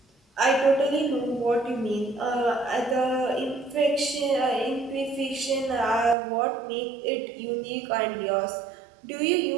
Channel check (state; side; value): drops out; left; at 6.2 s